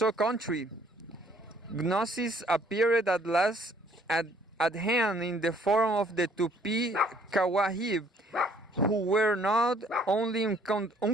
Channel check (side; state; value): both; normal; correlation 0.61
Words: country, Gnosis appeared at last at hand in the form of the Tupi Kawahib, who were not only